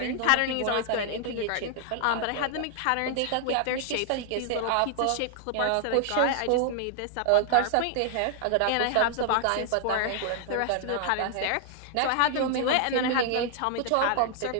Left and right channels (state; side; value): different; both; correlation -0.01